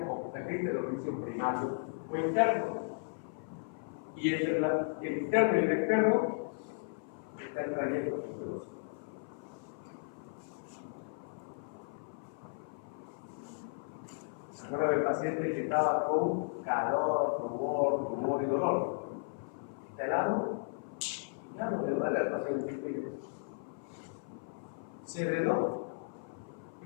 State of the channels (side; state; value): right; silent; 54 dB below the other